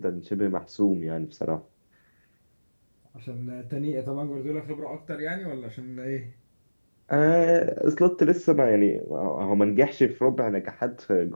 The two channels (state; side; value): inverted; both; correlation -1.00